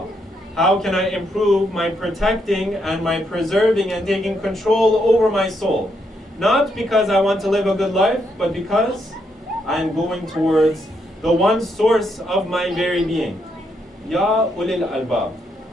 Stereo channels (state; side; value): normal; both; correlation 0.77